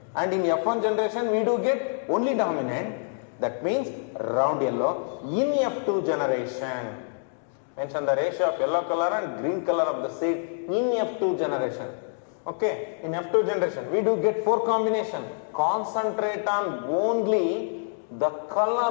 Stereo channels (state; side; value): silent; right; digital silence